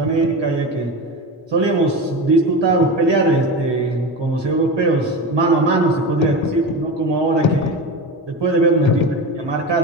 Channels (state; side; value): normal; both; correlation 0.24